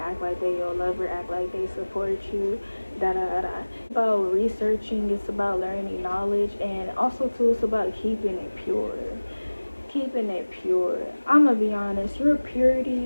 act like they your lover, act like they support you. Da da da da. It's about researching. It's about learning knowledge, and also too, it's about keeping it pure. Keeping it pure. I'm gonna be honest, your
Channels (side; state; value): both; inverted; correlation -1.00